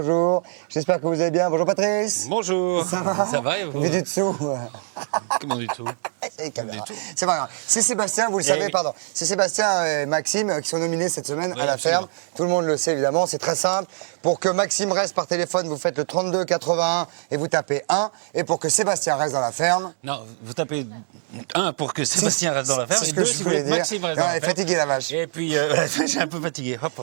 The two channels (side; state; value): left; silent; digital silence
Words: J'espère que vous allez bien. Bonjour Patrice. Bonjour. Ça va? Ça va et vous? Vu du dessous. Comment du tout? C'est pas grave. C'est Sébastien, vous le savez, oui. pardon. C'est Sébastien et Maxime qui sont nominés cette semaine à la absolument. ferme. Tout le monde le sait évidemment, c'est très simple. Pour que Maxime reste par téléphone, vous faites le 32 81 et vous tapez 1. Et pour que Sébastien reste dans la ferme... Non, vous tapez 1 pour que Sébastien reste dans la ferme c'est ce et que 2 je si vous voulais voulez que dire. Maxime reste Non, dans elle la est ferme. fatiguée la vache. Et puis, j'ai un peu fatigué. Hop,